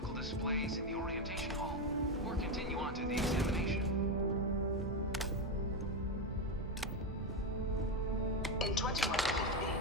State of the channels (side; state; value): both; normal; correlation 0.11